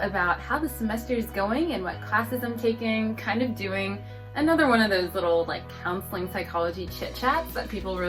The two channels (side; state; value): both; identical; correlation 1.00